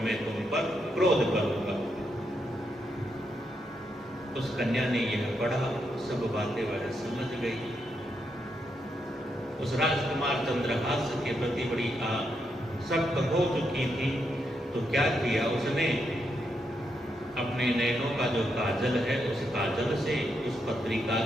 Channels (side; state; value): both; normal; correlation 0.81